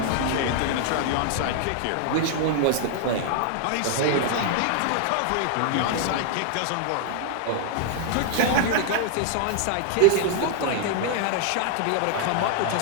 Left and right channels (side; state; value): both; different; correlation 0.00